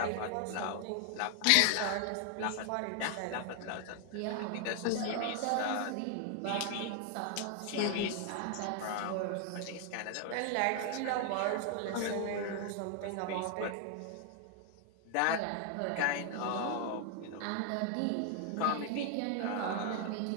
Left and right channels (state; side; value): different; both; correlation 0.00